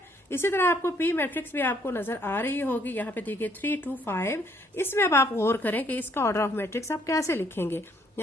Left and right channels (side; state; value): both; normal; correlation 0.66